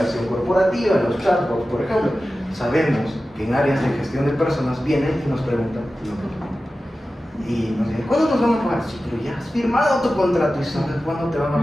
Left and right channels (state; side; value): normal; both; correlation 0.94